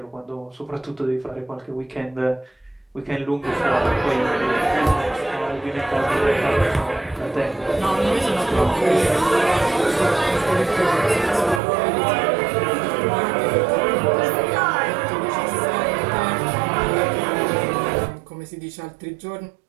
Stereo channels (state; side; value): drops out; left; at 11.6 s